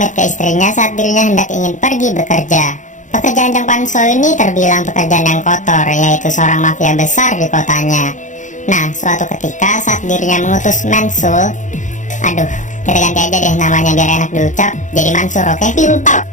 ke istrinya saat dirinya hendak ingin pergi bekerja. Pekerjaan Jang Panso ini terbilang pekerjaan yang kotor, yaitu seorang mafia besar di kotanya. Nah, suatu ketika saat dirinya mengutus Mansul, kita ganti aja deh namanya biar enak diucap, jadi Mansur, oke? Pintar.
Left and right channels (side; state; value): right; late; 0.36 ms